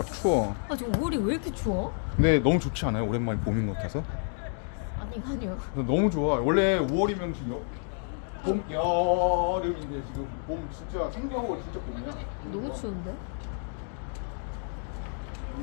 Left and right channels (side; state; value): right; silent; 58 dB below the other